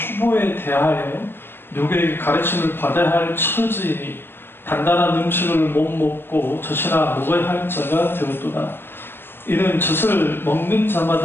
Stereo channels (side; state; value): right; late; 0.10 ms